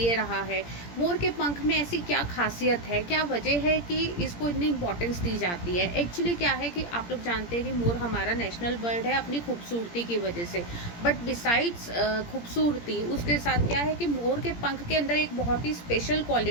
रहा है। मोर के पंख में ऐसी क्या खासियत है, क्या वजह है कि इसको इतनी इंपॉर्टेंस दी जाती है? एक्चुअली क्या है कि आप लोग जानते हैं कि मोर हमारा नेशनल बर्ड है अपनी खूबसूरती की वजह से। बट बिसाइड्स खूबसूरती, उसके साथ क्या है कि मोर के पंख के अंदर एक बहुत ही स्पेशल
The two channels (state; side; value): late; right; 17 ms